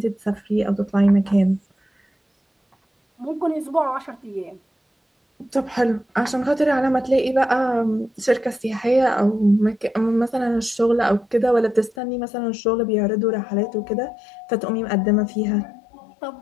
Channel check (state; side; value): drops out; right; at 12.0 s